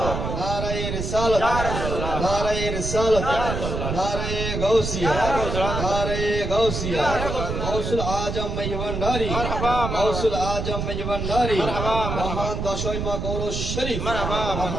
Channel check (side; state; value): right; noise; rumble, 3 dB below the sound